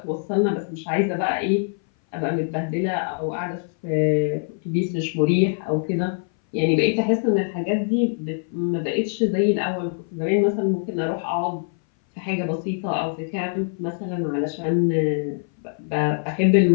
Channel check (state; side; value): silent; right; 60 dB below the other